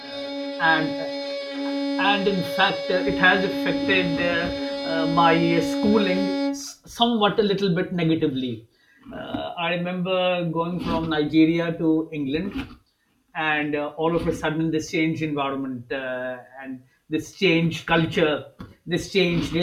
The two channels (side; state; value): both; identical; correlation 1.00